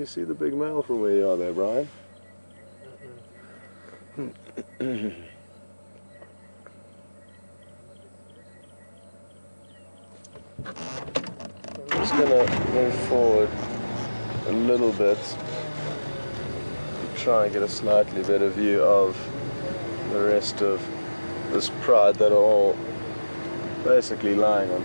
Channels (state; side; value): inverted; both; correlation -1.00